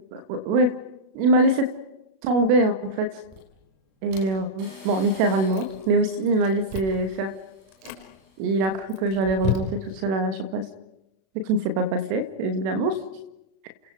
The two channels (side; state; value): left; late; 37 ms